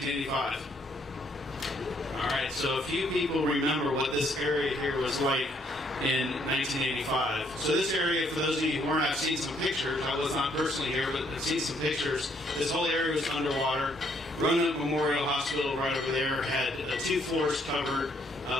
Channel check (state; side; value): normal; both; correlation 0.69